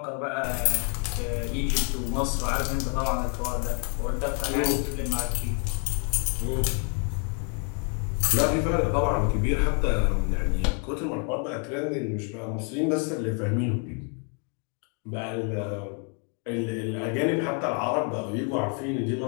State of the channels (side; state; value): right; quieter; 39.3 dB